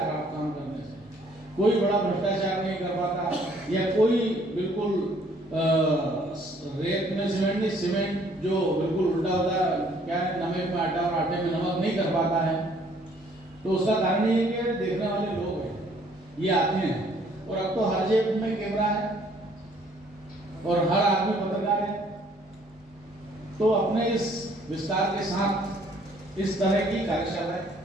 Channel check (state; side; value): normal; both; correlation 0.61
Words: खराब काम करने से। कोई बड़ा भ्रष्टाचार नहीं कर पाता, या कोई बिल्कुल रेत में सीमेंट नहीं, सीमेंट जो बिल्कुल उल्टा होता है, क्या नमक में आटा और आटे में नमक नहीं कर पाता है। तो उसका कारण ये है कि देखने वाले लोग हैं, ये आते हैं, और अब तो हर जेब में कैमरा है और हर आदमी पत्रकार है। तो अपने इस विस्तार के साथ इस तरह की कार्यशालाएं,